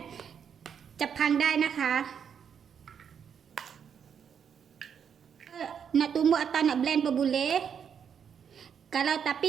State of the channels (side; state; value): left; quieter; 7.6 dB